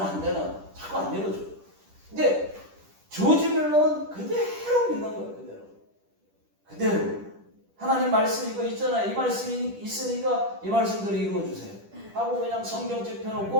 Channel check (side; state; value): left; late; 10 ms